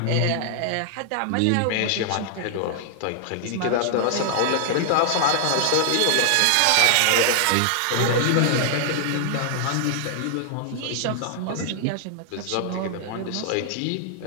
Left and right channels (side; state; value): both; different; correlation 0.00